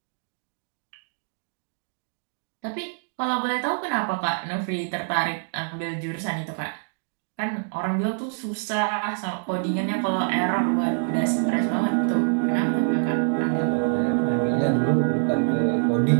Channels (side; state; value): left; silent; digital silence